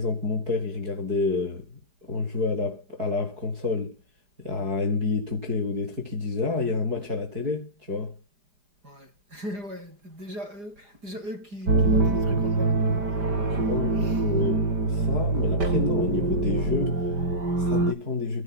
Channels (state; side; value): late; left; 4.9 ms